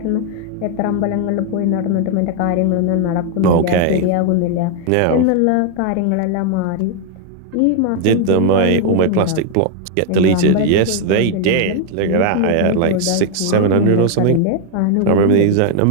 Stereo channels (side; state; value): both; different; correlation 0.00